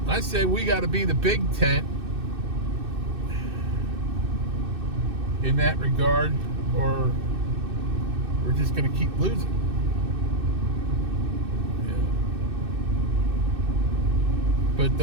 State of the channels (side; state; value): left; late; 2.6 ms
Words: I say we got to be the big tent in that regard, or we're just going to keep losing.